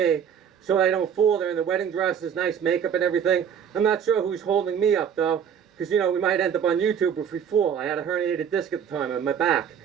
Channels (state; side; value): quieter; left; 8.0 dB